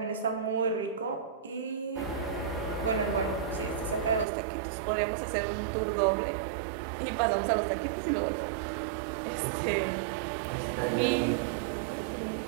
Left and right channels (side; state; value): left; drops out; at 4.2 s